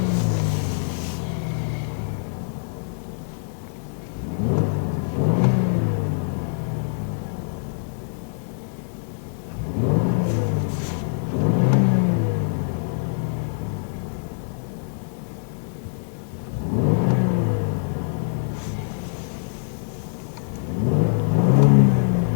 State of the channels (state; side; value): silent; right; 63 dB below the other